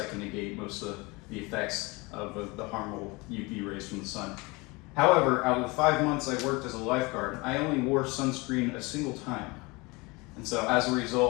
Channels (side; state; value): right; quieter; 25.4 dB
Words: can negate most of the effects of the harmful UV rays from the sun. However, out of the 5 months I worked as a lifeguard, I only wore sunscreen a single time. And so as a